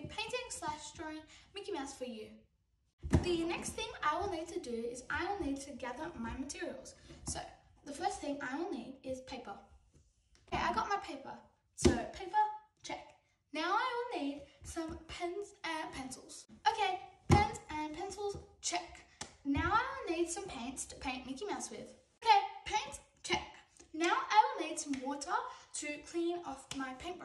painting/drawing Mickey Mouse for you. The next thing I will need to do is I will need to gather my materials. So the first thing I will need is paper. Okay, I got my paper. So paper, check. Now I will need some pens and pencils. Okay, pens and pencils, check. Now I will need some paints to paint Mickey Mouse with. Okay, paints, check. Now I will need some water to clean off my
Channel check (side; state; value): both; identical; correlation 1.00